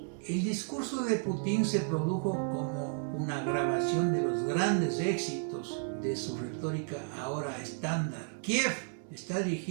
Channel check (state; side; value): silent; left; 56 dB below the other